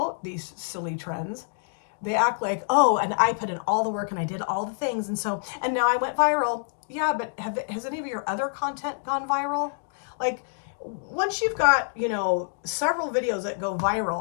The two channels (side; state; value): right; silent; digital silence